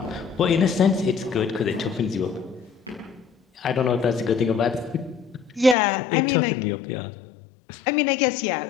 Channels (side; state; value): right; drops out; at 5.8 s